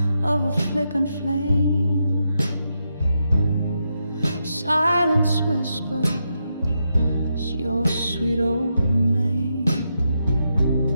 of a flickering flame, silence whispers your sweet old name.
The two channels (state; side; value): inverted; both; correlation -0.84